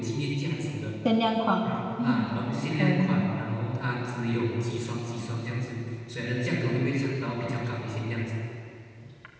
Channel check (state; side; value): identical; both; correlation 1.00